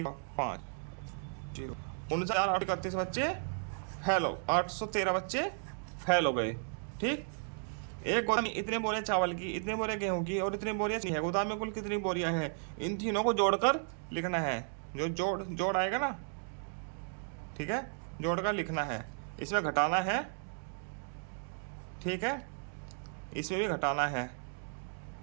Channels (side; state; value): left; silent; 55 dB below the other